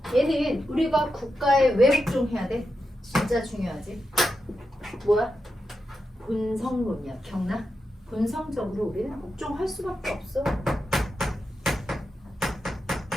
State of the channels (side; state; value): both; normal; correlation 0.88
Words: 얘는 우리가 국가에 왜 복종해야 돼? 진짜 중요하지? 뭐야? 본성론이야. 기억나? 본성적으로 우리는 복종할 수밖에 없어.